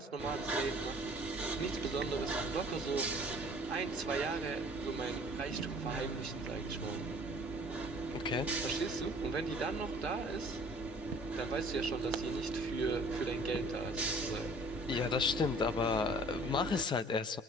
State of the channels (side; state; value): both; normal; correlation 0.52